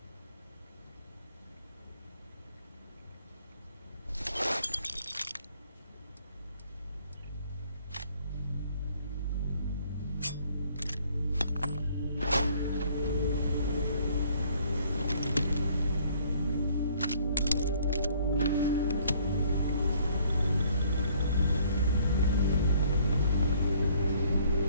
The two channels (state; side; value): inverted; both; correlation -0.61